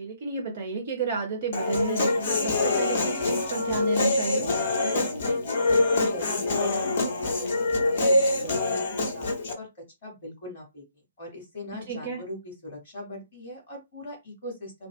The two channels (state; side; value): inverted; both; correlation -0.73